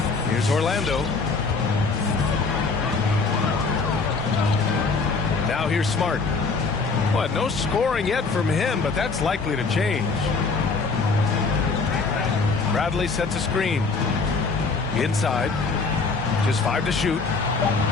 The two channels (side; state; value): right; quieter; 4.3 dB